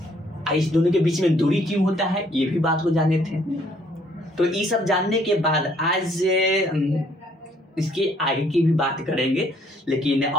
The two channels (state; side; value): normal; both; correlation 0.64